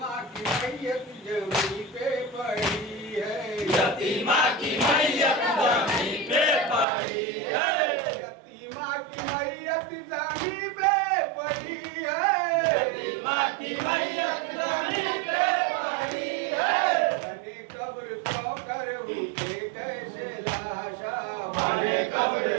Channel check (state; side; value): drops out; left; at 6.9 s